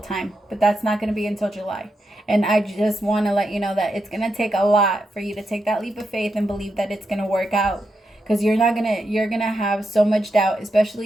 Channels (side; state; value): both; normal; correlation 0.85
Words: But that's not going to be until July. And I just want to let you know that it's going to take a lot for you to take that leap of faith and believe that it's going to work out. Because you're going to have so much doubt,